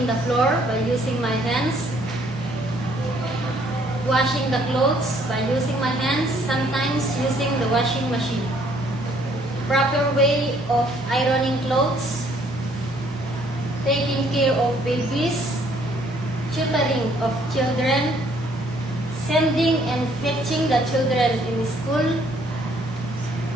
the floor by using my hands, washing the clothes by using my hands, sometimes using the washing machine, proper way of ironing clothes, taking care of babies, tutoring of children, sending and fetching the children in school,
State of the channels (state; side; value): normal; both; correlation 0.64